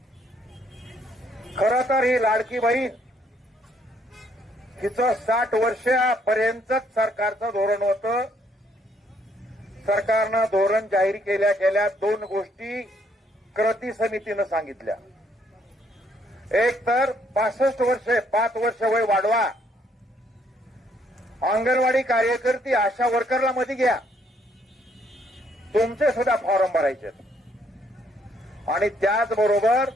खरं तर ही लाडकी बहीण हिचं 60 वर्षापर्यंतच सरकारचं धोरण होतं। सरकारनं धोरण जाहीर केल्या गेल्या 2 गोष्टी कृती समितीनं सांगितल्या। एक तर 65 वर्षे 5 वर्ष वय वाढवा, अंगणवाडी कार्यकर्ती आशा वर्करला मध्ये घ्या, तुमचे सुद्धा फॉर्म भरायचे आणि त्याचबरोबर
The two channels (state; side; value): normal; both; correlation 0.69